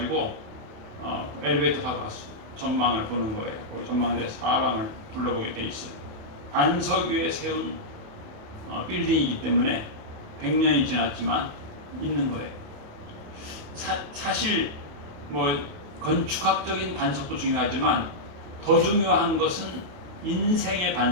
엘리베이터 타고 갔어. 전망을 보는 거예요. 전망대 사방을 둘러보게 돼 있어요. 반석 위에 세운 빌딩이기 때문에 100년이 지났지만 있는 거예요. 사실 뭐 건축학적인 반석도 중요하지만 더 중요한 것은 인생의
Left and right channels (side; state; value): left; late; 28 ms